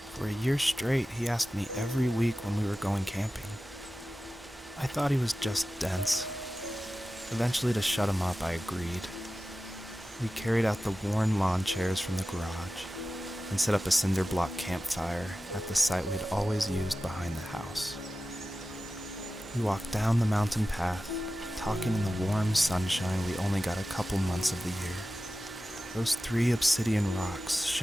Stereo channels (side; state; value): both; normal; correlation 0.94